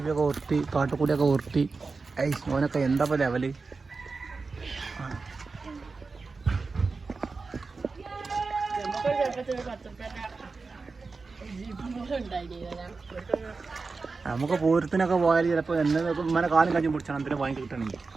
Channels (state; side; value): quieter; left; 4.2 dB